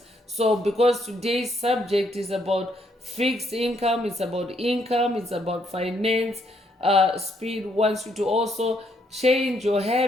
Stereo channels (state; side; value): normal; both; correlation 0.72